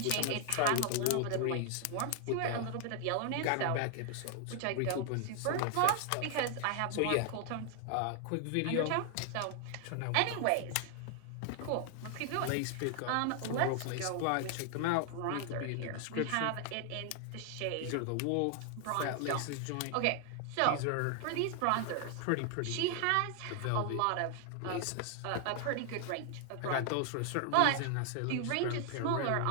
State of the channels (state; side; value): different; both; correlation 0.00